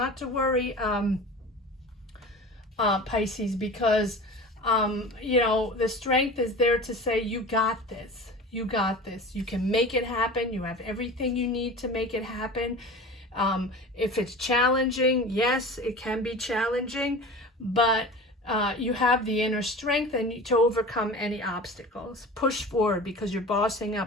to worry, Pisces, because you know, the strength is there to say, you got this, you can make it happen. You have everything you need to make it happen. If it's challenging, yes, it can be challenging, but you have the inner strength and to overcome any obstacles. Push forward, because you're bossing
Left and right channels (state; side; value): normal; both; correlation 0.36